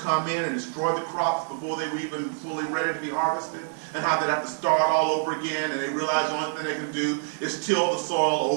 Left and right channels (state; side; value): silent; left; 61 dB below the other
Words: in and destroy the crops before they were even fully ready to be harvested, and how they'd have to start all over again, and they realized the only thing they can do is till the soil